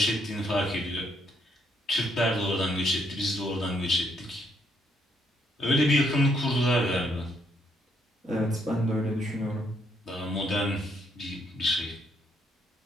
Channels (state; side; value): normal; both; correlation 0.72